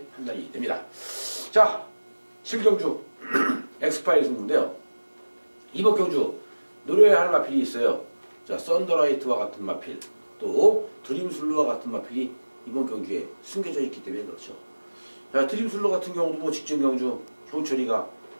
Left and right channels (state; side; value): inverted; both; correlation -1.00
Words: 판단이 됩니다. 자, 7경주 엑스파일 승부인데요. 이번 경주 노려야 할 마필이 있어요. 자, 썬더라이트와 같은 마필 또 드림슬루와 같은 마필이 이번 경주에 숨겨져 있기 때문에 그렇죠. 자, 드림슬루 같은 경우도 뭐 직전 경주 효철이가